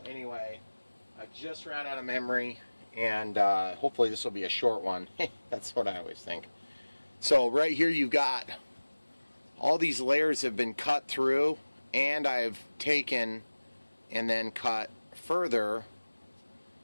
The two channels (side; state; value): both; inverted; correlation -1.00